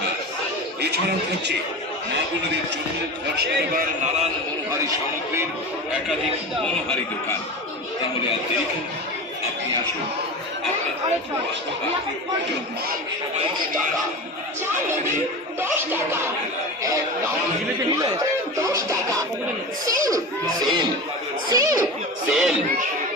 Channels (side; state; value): both; normal; correlation 0.28